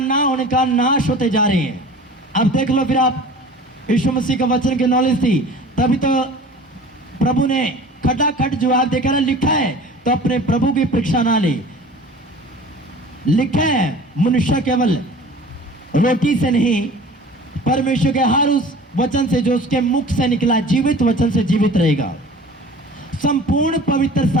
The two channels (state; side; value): normal; both; correlation 0.42